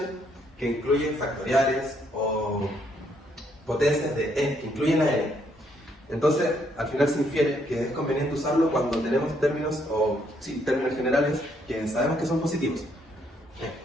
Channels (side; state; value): both; normal; correlation 0.71